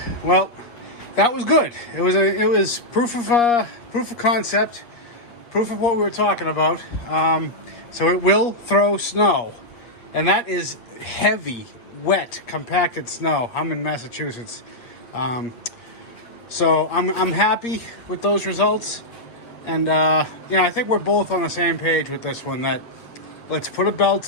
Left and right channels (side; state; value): right; late; 8.5 ms